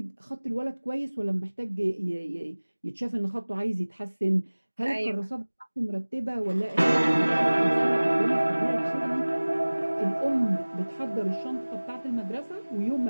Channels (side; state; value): both; inverted; correlation -1.00